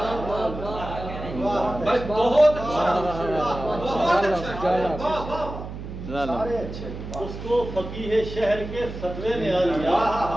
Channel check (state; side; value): noise; right; hum, 9 dB below the sound